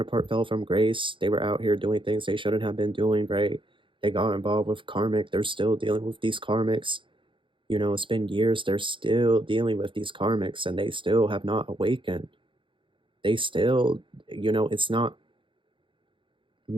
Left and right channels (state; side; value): late; left; 0.24 ms